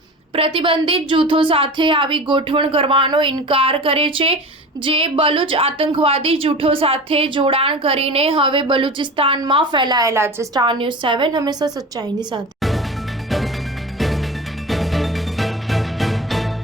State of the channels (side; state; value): both; normal; correlation 0.32